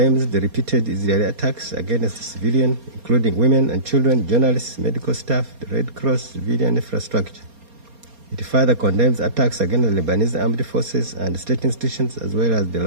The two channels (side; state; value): left; late; 4.3 ms